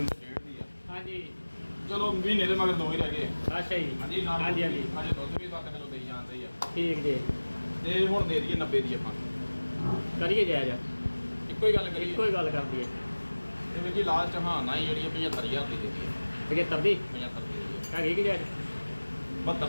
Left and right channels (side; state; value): both; inverted; correlation -1.00